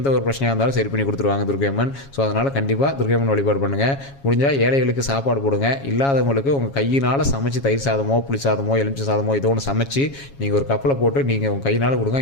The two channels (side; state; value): right; late; 7.3 ms